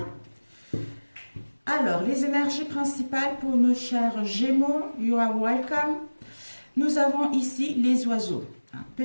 Alors, les énergies principales pour nos chers Gémeaux, you are welcome. Nous avons ici les oiseaux.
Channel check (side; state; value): both; inverted; correlation -1.00